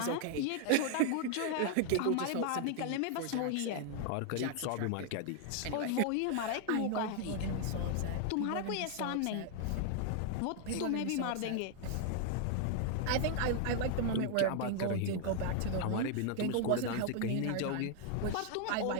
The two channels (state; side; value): different; both; correlation 0.00